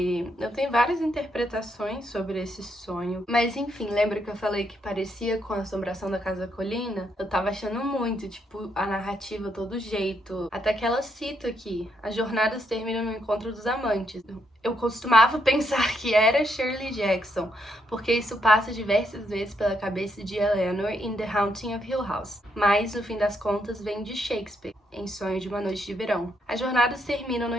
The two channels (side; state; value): both; normal; correlation 0.77